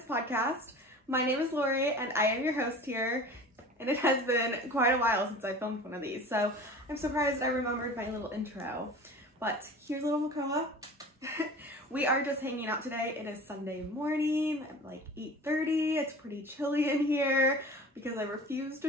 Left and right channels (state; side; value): normal; both; correlation 0.39